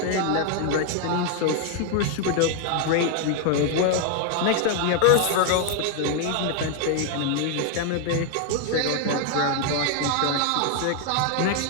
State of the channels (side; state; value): both; different; correlation 0.00